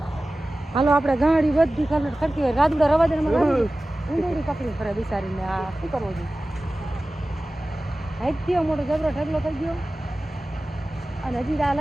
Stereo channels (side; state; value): both; normal; correlation 0.96